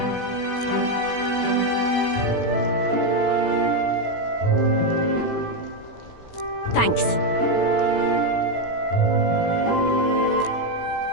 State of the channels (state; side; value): late; right; 16 ms